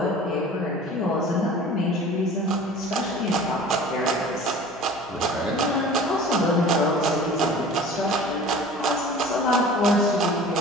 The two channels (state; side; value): normal; both; correlation 0.43